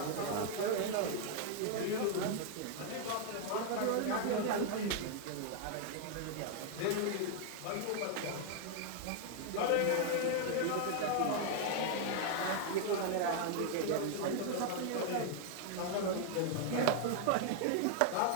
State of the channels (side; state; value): both; different; correlation 0.00